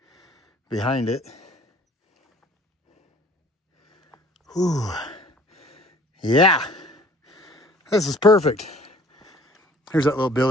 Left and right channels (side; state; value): both; normal; correlation 0.52